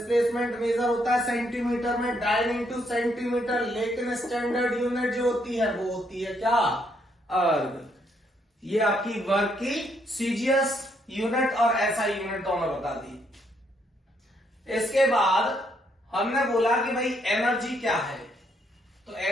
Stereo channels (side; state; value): both; normal; correlation 0.73